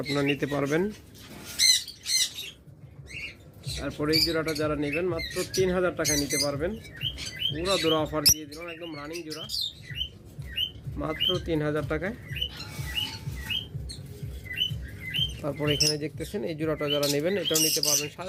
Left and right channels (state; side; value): identical; both; correlation 1.00